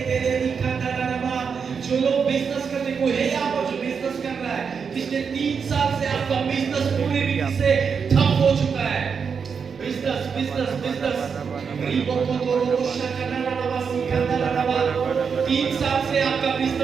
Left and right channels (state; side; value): quieter; left; 6.1 dB